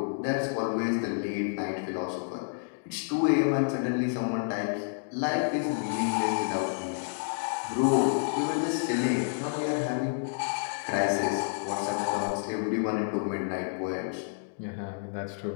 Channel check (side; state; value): right; silent; digital silence